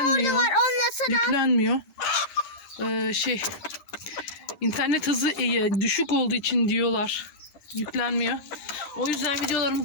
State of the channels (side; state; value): right; late; 11 ms